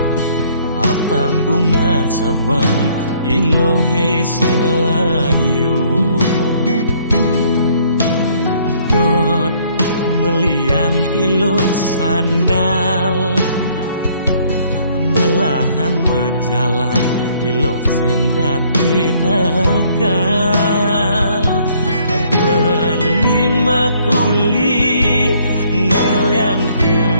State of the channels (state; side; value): inverted; both; correlation -0.63